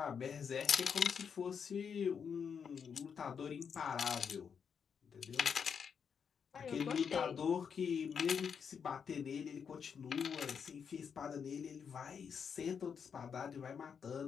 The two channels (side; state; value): right; quieter; 6.8 dB